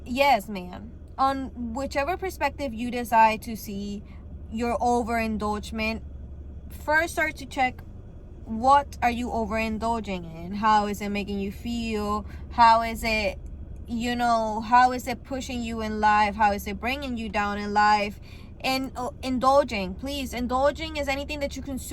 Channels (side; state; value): both; identical; correlation 1.00